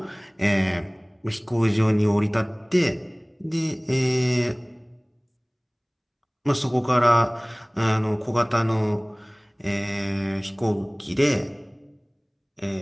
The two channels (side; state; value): both; identical; correlation 1.00